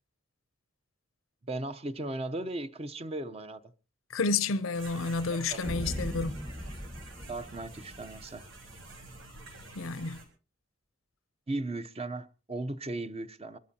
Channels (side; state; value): both; normal; correlation 0.42